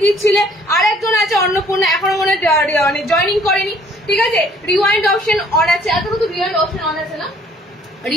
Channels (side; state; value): both; normal; correlation 0.59